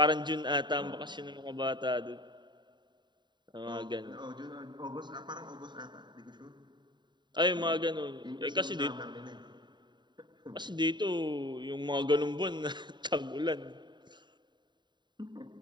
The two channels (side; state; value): left; late; 0.22 ms